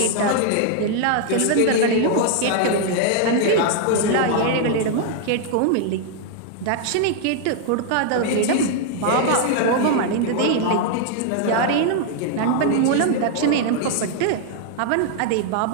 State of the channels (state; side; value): different; both; correlation 0.00